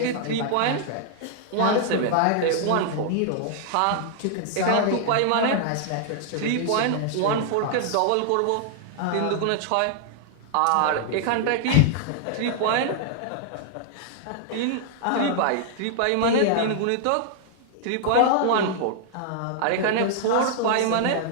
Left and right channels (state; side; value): different; both; correlation -0.01